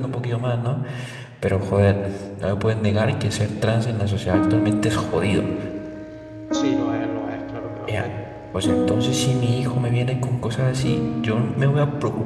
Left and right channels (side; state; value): both; identical; correlation 1.00